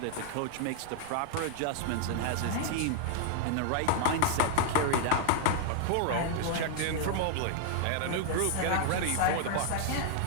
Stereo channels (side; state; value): both; different; correlation -0.01